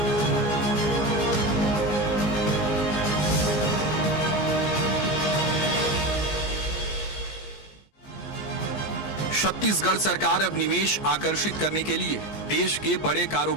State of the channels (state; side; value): late; right; 15 ms